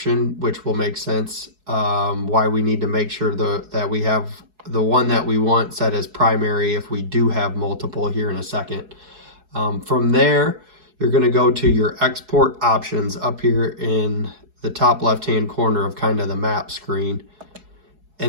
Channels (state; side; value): late; left; 4.7 ms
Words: which will make sense why we need to make sure that we have the one that we want set as primary if we do have multiple here in a second. From there, you're going to go to your export options up here in the top left-hand corner of kind of the map screen.